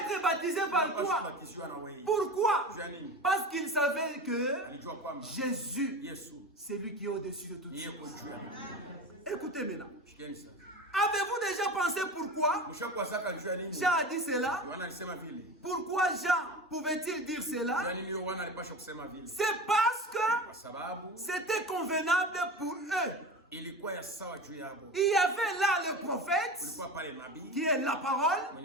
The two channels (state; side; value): normal; both; correlation 0.30